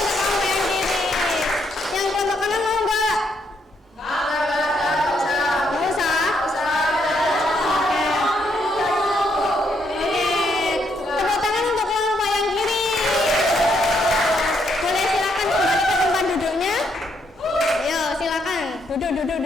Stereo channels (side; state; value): both; normal; correlation 0.75